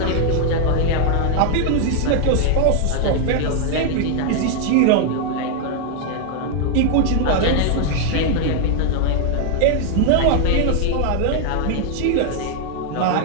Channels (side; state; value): both; different; correlation 0.00